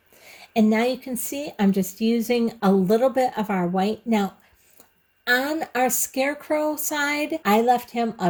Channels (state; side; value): identical; both; correlation 1.00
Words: And now you can see I'm just using a little bit of our white. Now, on our scarecrow side, I left him a